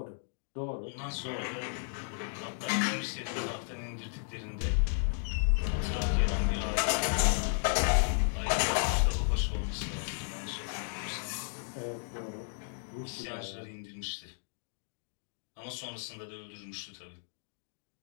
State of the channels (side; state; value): right; silent; digital silence